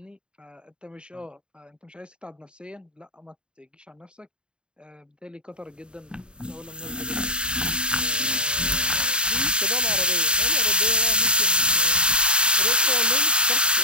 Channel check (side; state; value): left; late; 0.051 ms